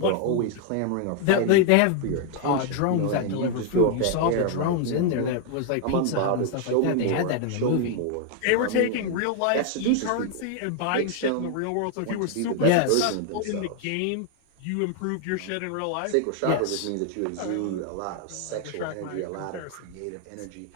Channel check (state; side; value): different; both; correlation 0.00